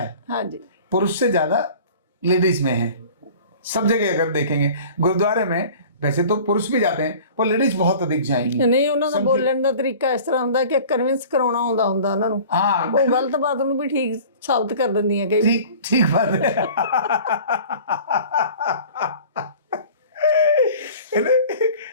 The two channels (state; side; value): inverted; both; correlation -0.44